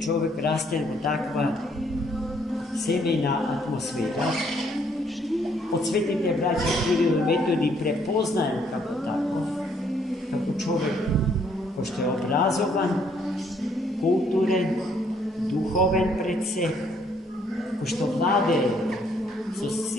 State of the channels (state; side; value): normal; both; correlation 0.67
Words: растен во таква семејна атмосфера od svetite braća Kiril i Metodi prepoznajem kako tako, kako čovjek, pošto je obrazovan, kulturen, duhoven pred se, pošto vlade su